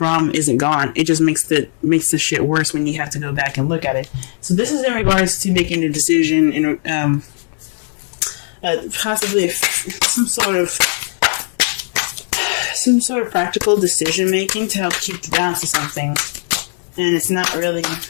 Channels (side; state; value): right; silent; digital silence